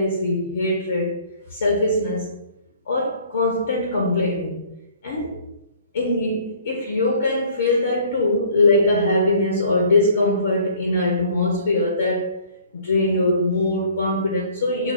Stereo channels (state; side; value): inverted; both; correlation -0.54